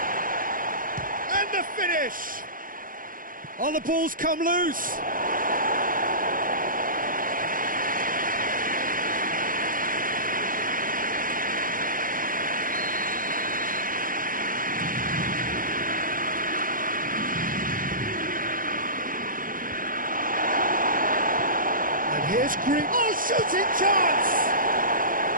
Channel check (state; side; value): late; left; 0.40 ms